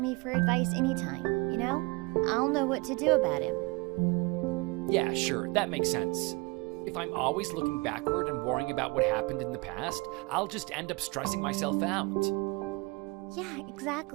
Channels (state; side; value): quieter; left; 26.3 dB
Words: for advice anytime, you know? I'll know what to do about him. Yeah, sure, that makes sense. If I'm always looking backward and worrying about what happened in the past, I'll just end up stressing myself out. Yeah,